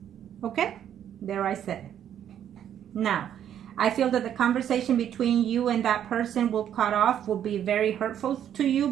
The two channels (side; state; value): left; quieter; 9.9 dB